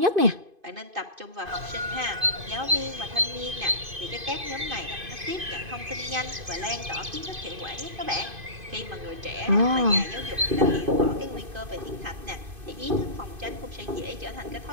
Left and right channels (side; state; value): left; late; 2.5 ms